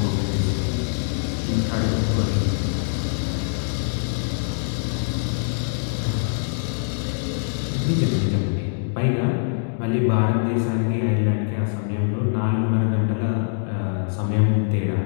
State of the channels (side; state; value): right; silent; digital silence